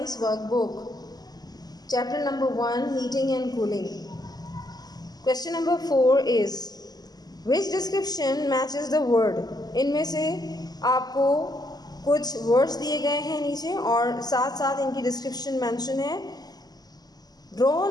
Workbook. Chapter number 1, Heating and Cooling. Question number 4 is, which description matches the word? इनमें से आपको कुछ words दिए गए हैं नीचे और साथ साथ इनकी description mention है. Draw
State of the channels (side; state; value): right; late; 0.19 ms